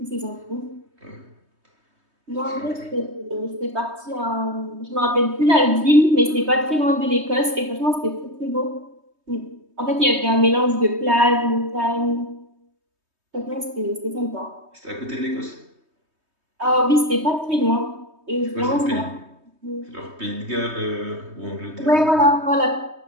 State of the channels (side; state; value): left; late; 3.2 ms